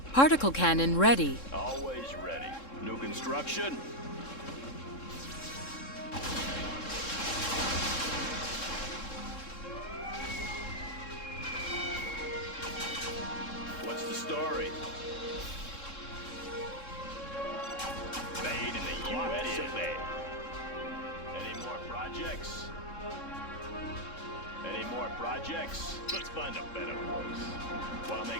Particle cannon ready. Always ready. New construction? What's the story? Made in the U.S. of A. Any more projects? Any more projects? Let's find a better place. Want to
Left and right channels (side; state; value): right; late; 3.7 ms